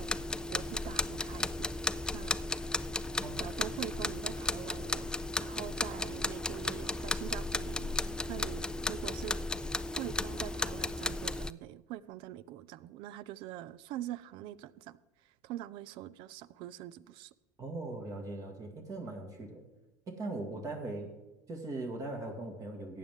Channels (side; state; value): both; normal; correlation 0.41